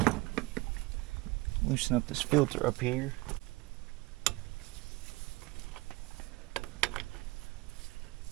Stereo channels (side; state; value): left; quieter; 22.6 dB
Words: loosen up this filter up here.